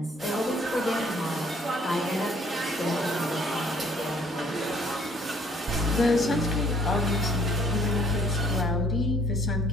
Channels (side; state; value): both; normal; correlation 0.61